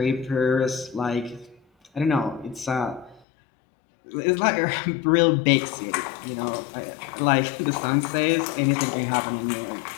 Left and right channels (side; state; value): right; drops out; at 3.2 s